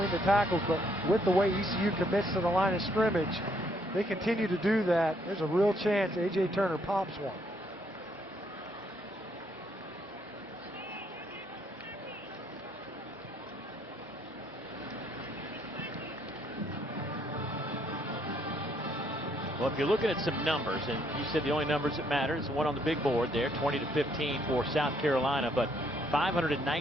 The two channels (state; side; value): normal; both; correlation 0.70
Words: the tackles, but with the way ECU commits to the line of scrimmage, they continue to do that. There's a real chance A.J. Turner pops one. Well, if you're looking at some numbers, and you said the only numbers that matter is the one on the big board there, 20-15 for South Carolina, but